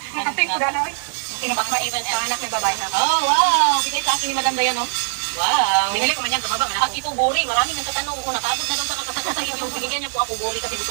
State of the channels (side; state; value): left; silent; 57 dB below the other